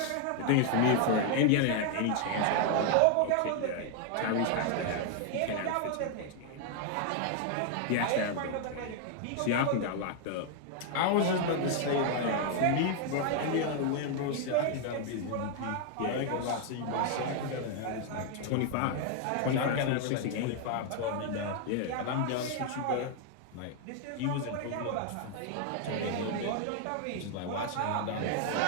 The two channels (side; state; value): both; different; correlation 0.00